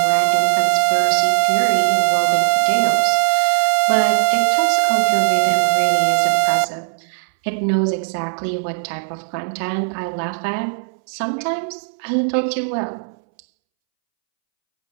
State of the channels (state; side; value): silent; left; 67 dB below the other